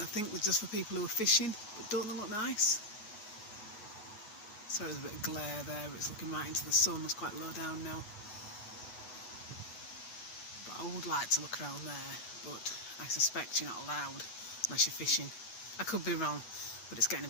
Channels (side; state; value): right; late; 9.2 ms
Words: think they're just for people who are fishing, but don't they look nice? So there's a bit of glare there, but it's looking right into the sun. It's quite low down now. But I would like to look around there, but I suspect you're not allowed unless you're fishing. I could be wrong, but it's getting a